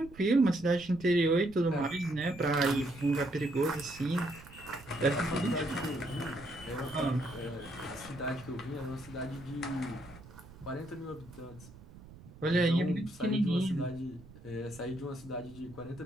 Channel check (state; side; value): noise; right; rumble, 19 dB below the sound